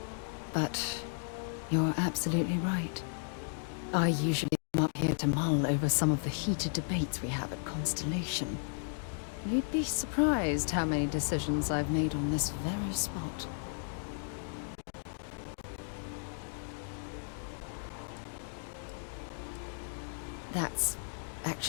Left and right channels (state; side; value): silent; right; digital silence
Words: But you're absolutely right. I usually come up here to mull over some of the heated debates we have at Constellation. You'd be surprised how many decisions I've made on this very spot. That's